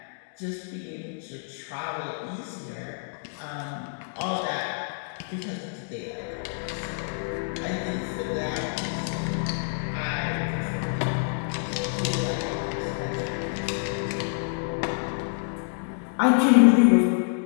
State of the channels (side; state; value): right; silent; digital silence